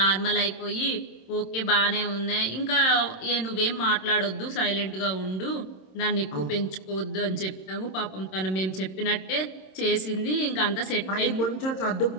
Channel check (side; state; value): right; late; 26 ms